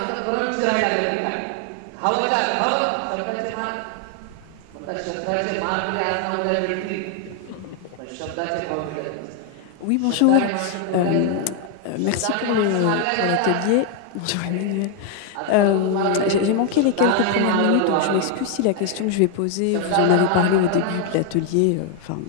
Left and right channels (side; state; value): both; different; correlation 0.00